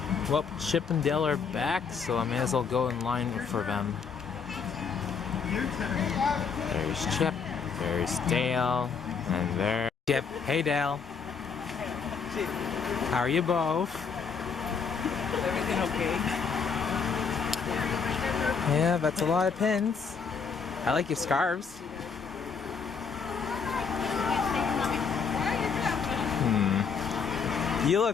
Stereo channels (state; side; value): quieter; right; 5.8 dB